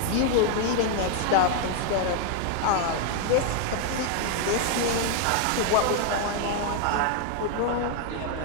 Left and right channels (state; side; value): different; both; correlation 0.00